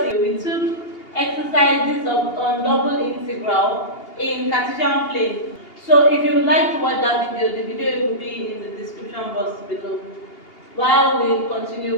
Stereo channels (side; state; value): right; late; 2.8 ms